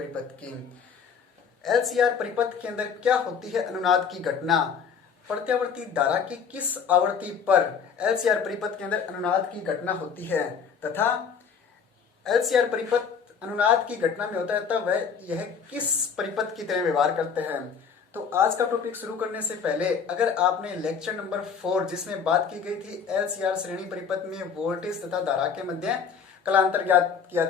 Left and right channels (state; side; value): quieter; right; 6.6 dB